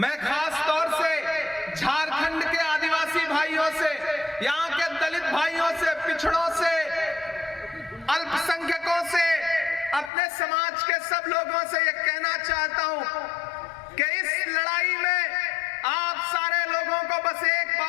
खास तौर से झारखंड के आदिवासी भाइयों से, यहाँ के दलित भाइयों से, पिछड़ों से, अल्पसंख्यकों से, अपने समाज के सब लोगों से ये कहना चाहता हूं कि इस लड़ाई में आप सारे लोगों को बस एक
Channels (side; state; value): right; drops out; at 10.1 s